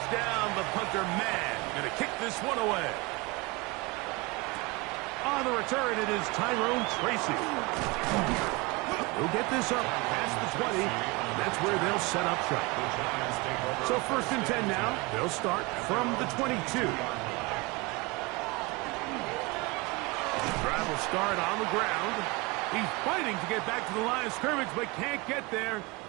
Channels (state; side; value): quieter; left; 25.2 dB